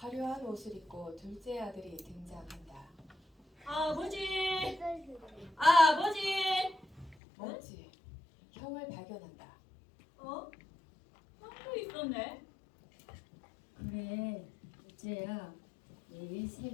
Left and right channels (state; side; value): drops out; right; at 7.2 s